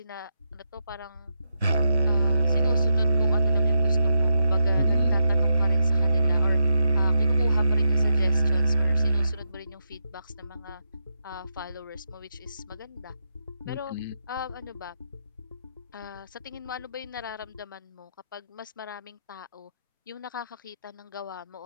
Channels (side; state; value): both; inverted; correlation -0.85